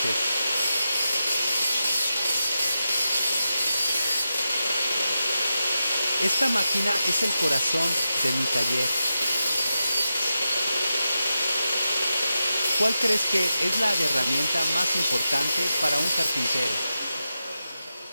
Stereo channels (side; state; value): both; inverted; correlation -0.89